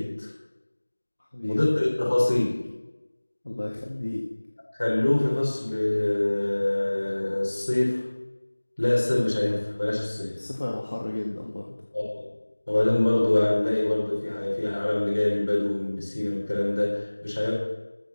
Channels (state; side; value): inverted; both; correlation -1.00